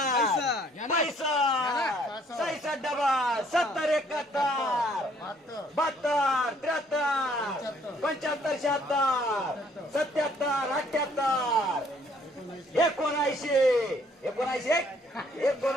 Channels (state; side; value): normal; both; correlation 0.63